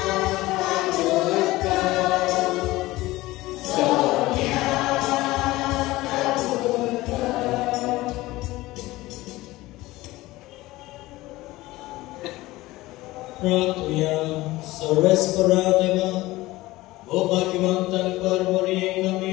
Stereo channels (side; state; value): right; quieter; 18.7 dB